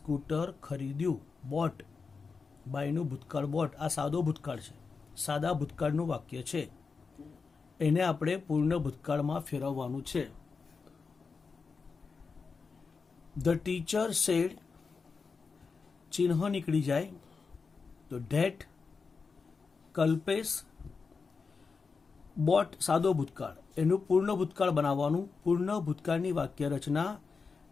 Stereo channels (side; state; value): right; quieter; 4.9 dB